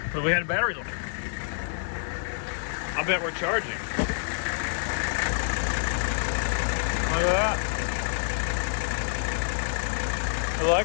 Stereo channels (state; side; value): silent; right; 60 dB below the other